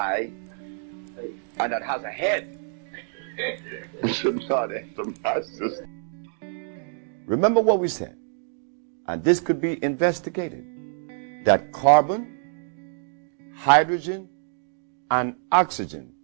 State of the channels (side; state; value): left; silent; digital silence